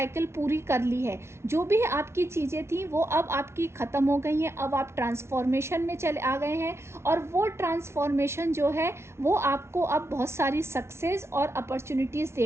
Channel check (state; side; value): late; left; 0.13 ms